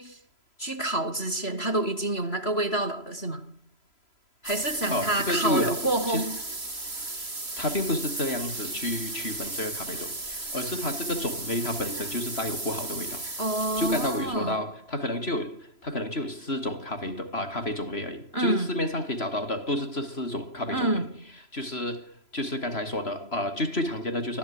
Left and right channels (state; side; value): late; right; 3.0 ms